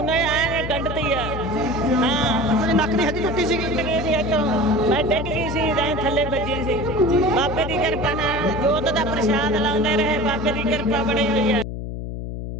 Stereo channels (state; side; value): noise; left; hum, 6 dB below the sound